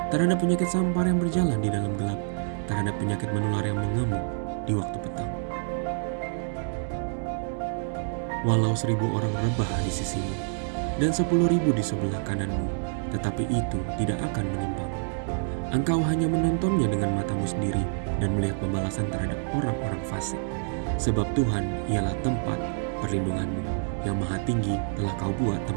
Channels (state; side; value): silent; left; digital silence